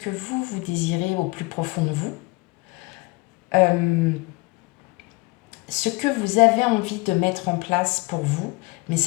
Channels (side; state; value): right; quieter; 25.3 dB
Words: vous désirez au plus profond de vous. Ce que vous avez envie de mettre en place pour vous, mais